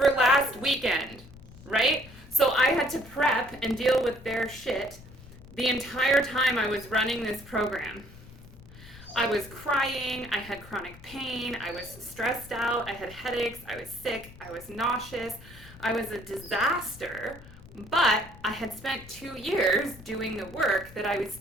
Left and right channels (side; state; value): left; noise; rumble, 19 dB below the sound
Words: last weekend, right? So I had to prep and deal with their shit the entire time I was running this program. I was crying, I had chronic pain, I was stressed out, I had headaches, I was sick, I was nauseous, I was a disaster, but I had spent 2 years doing the work that I was